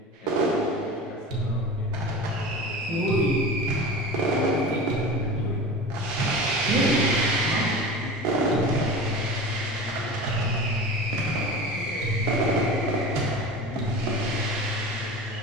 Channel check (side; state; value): both; normal; correlation 0.33